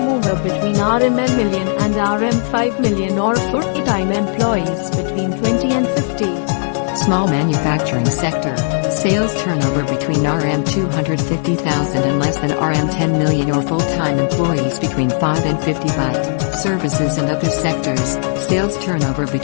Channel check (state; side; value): silent; right; digital silence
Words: between RML million and RM 5 million or full-time employees between 20 and 50. Small manufacturing sector. Sales turnover between RM 250,000 and less than RM 10 million or full-time employees between 5 and 50 byte. Services and other sectors. Sales turnover